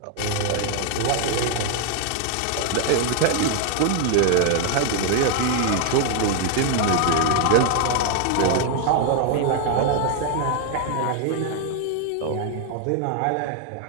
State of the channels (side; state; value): both; different; correlation 0.00